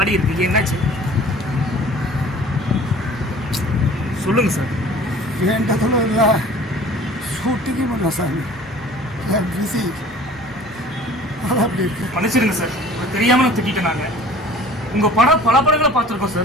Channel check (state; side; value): normal; both; correlation 0.47